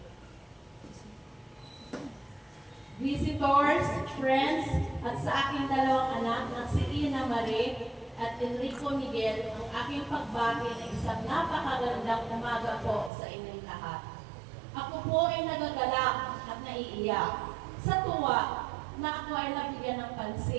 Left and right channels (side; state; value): left; drops out; at 13.1 s